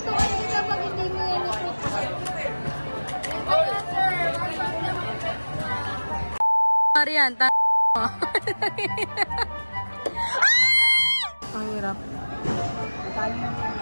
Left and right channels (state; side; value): inverted; both; correlation -1.00